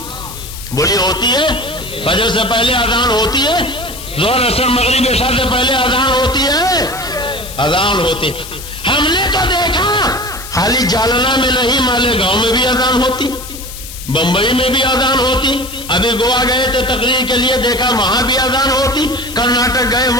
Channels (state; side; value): noise; left; hiss, 13 dB below the sound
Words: بولی ہوتی ہے؟ فجر سے پہلے اذان ہوتی ہے، ظہر عصر مغرب عشاء سے پہلے اذان ہوتی ہے، اذان ہوتی۔ ہم نے تو دیکھا خالی جالنا میں نہیں، مالیگاؤں میں بھی اذان ہوتی، بمبئی میں بھی اذان ہوتی، ابھی گوا گئے تھے تقریر کے لیے، دیکھا وہاں بھی اذان ہوتی، کرناٹک گئے